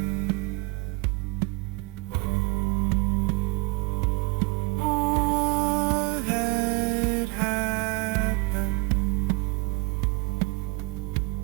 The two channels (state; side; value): quieter; left; 25.6 dB